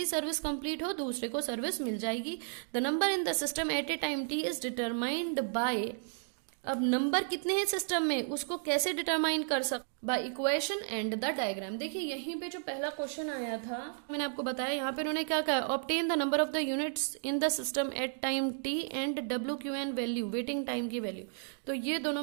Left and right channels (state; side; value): silent; left; digital silence